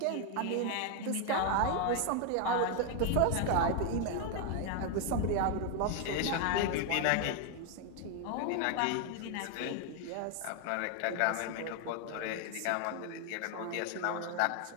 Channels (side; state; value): both; different; correlation 0.01